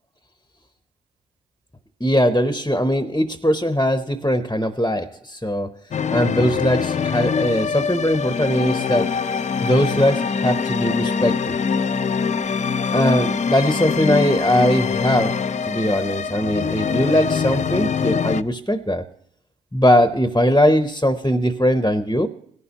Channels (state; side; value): normal; both; correlation 0.73